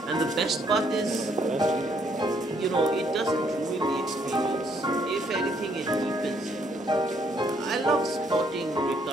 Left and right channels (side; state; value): both; normal; correlation 0.69